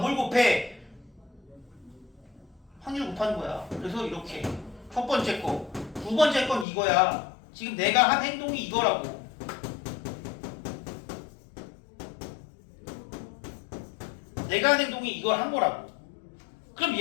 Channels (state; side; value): drops out; right; at 6.7 s